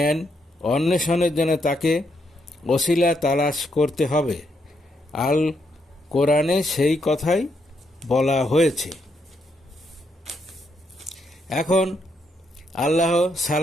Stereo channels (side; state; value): both; normal; correlation 0.78